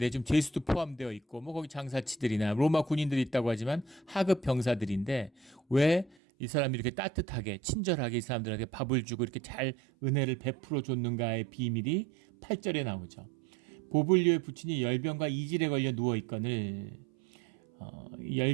지금 죄수도 포함되어 있고 뭐 거기 장사치들이나 로마 군인들이 있다고 하지만 하급 병사들인데 왜 이 사람이 이렇게 따뜻하게 친절하게 이 사람들한테 밥을 주고 이렇게 잘 은혜를 베풀어 줬는가의 비밀이 8절에 나오죠. 보블리오의 부친이 열병과 이질에 걸려 누워 있거늘.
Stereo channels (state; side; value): drops out; left; at 6.2 s